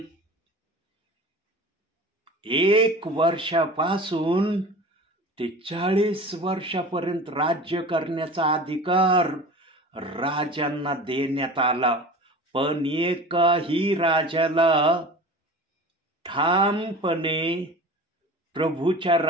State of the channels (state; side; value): normal; both; correlation 0.37